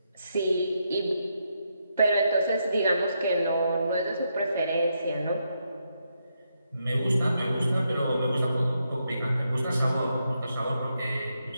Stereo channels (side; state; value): both; inverted; correlation -0.81